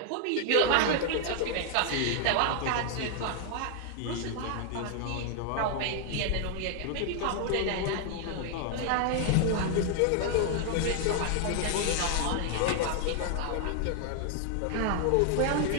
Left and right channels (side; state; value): both; different; correlation 0.00